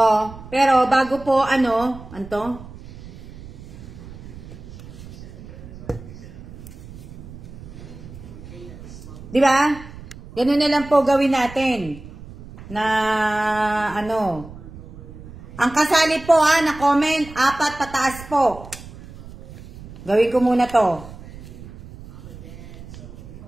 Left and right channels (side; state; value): right; noise; rumble, 16 dB below the sound